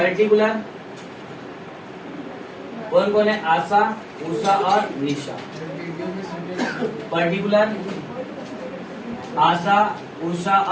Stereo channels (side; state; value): both; identical; correlation 1.00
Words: कौन कौन है, आशा उषा और निशा। पर्टिकुलर आशा उषा